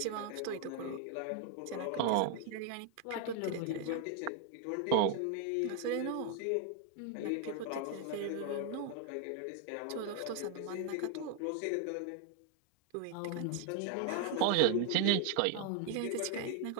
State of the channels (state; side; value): different; both; correlation 0.00